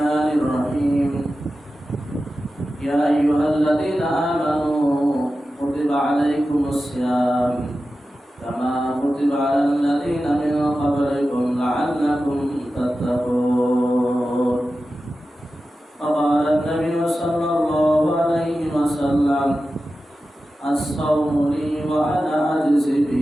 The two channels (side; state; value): both; normal; correlation 0.93